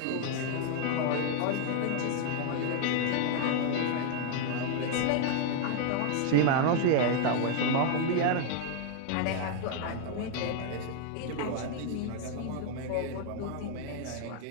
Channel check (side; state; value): both; different; correlation 0.00